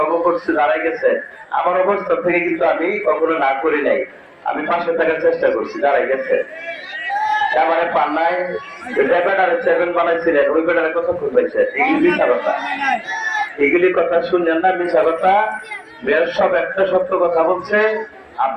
করছে দাঁড়াই গেছেন, আমার অবস্থা থেকে কিন্তু আমি কখনো না করি নাই, আমি পাশে থাকার চেষ্টা করছি, দাঁড়াই গেছে। আমার পান্নায় ব্যাটারে 7 বানাইছিলেন, ওই ব্যাটারে কথা খুঁজেছে, এগুলি মিথ্যা কথা, এগুলি কথা শুনলেন না, মিথ্যা কথা। মেয়র সব একটা সত্য কথা বলছে,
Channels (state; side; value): identical; both; correlation 1.00